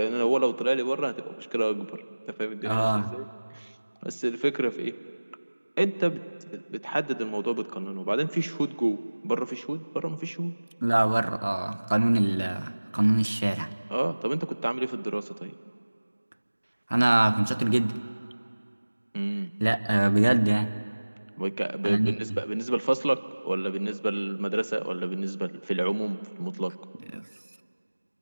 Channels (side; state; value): both; inverted; correlation -1.00